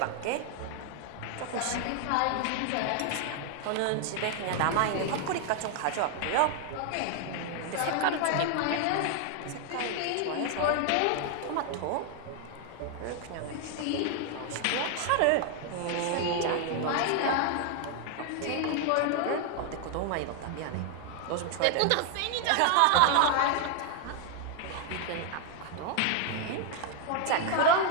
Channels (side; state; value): both; different; correlation 0.00